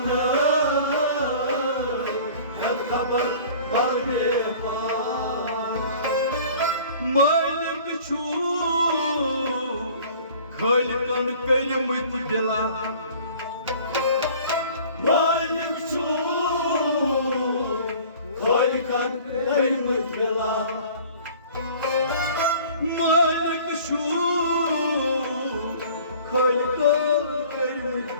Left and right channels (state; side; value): inverted; both; correlation -0.48